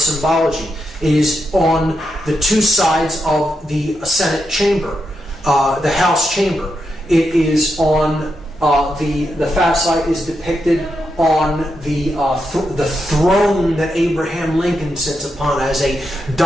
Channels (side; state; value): both; normal; correlation 0.84